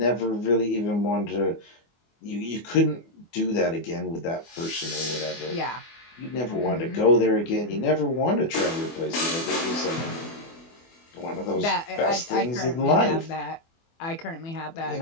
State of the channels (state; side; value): late; right; 24 ms